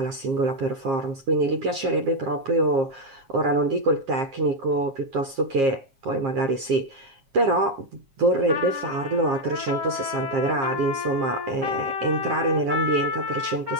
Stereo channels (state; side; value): late; left; 7.4 ms